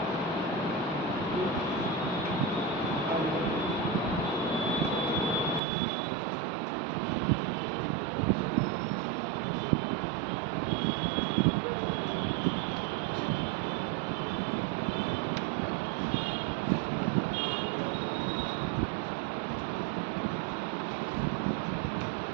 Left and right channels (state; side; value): drops out; left; at 5.6 s